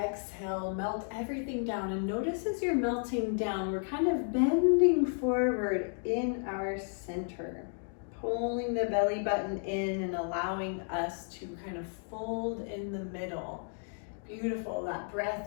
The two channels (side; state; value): right; silent; 56 dB below the other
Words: melt everything down, and notice as you're melting down, we're kind of bending forward in our center, pulling the belly button in and allowing us to kind of fold in the middle. Beautiful. That